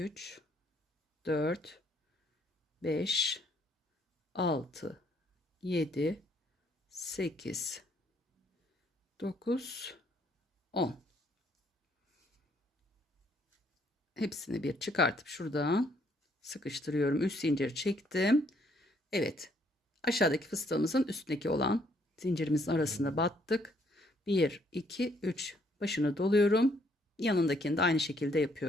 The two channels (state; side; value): normal; both; correlation 0.68